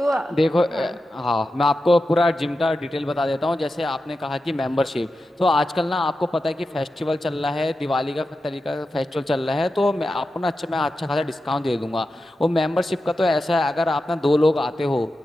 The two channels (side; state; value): both; normal; correlation 0.91